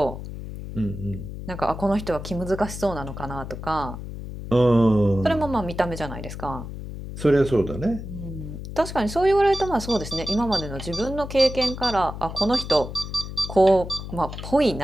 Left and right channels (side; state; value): left; noise; hum, 9 dB below the sound